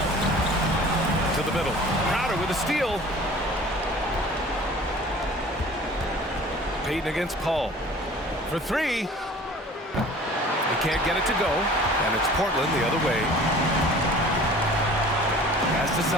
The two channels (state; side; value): normal; both; correlation 0.46